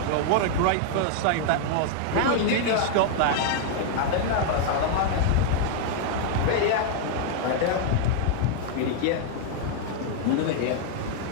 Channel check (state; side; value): different; both; correlation 0.00